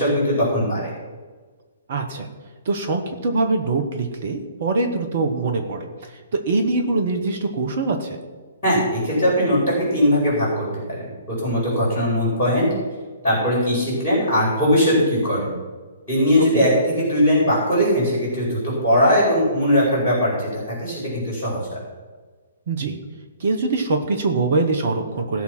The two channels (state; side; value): inverted; both; correlation -0.55